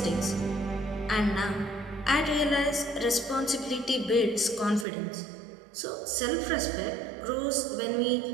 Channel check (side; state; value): left; drops out; at 4.9 s